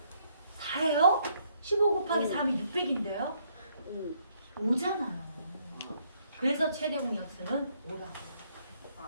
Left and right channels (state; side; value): inverted; both; correlation -0.70